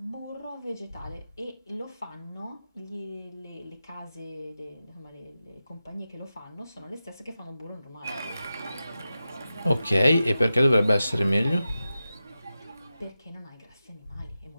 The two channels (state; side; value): inverted; both; correlation -0.92